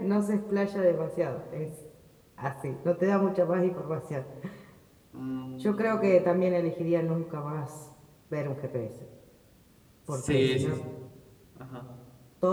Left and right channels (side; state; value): both; identical; correlation 1.00